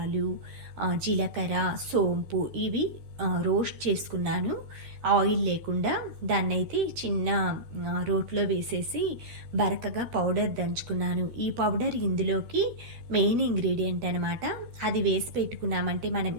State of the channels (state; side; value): late; left; 13 ms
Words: జీలకర్ర, సోంపు ఇవి రోస్ట్ చేసుకున్నాను. ఆయిల్ లేకుండా దాన్నైతే చిన్న రోట్లో వేసేసి బరకగా పౌడర్ దంచుకున్నాను. ఈ పౌడర్ ఇందులోకి మెయిన్ ఇంగ్రీడియంట్ అనమాట. అది వేసి పెట్టుకున్నామంటే మనం